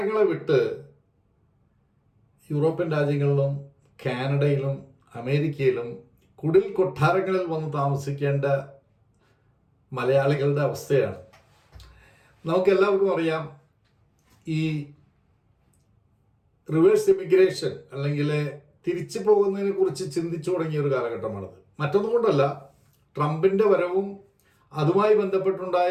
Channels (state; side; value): identical; both; correlation 1.00